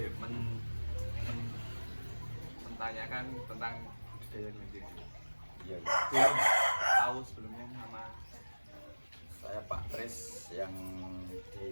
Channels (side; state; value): both; inverted; correlation -1.00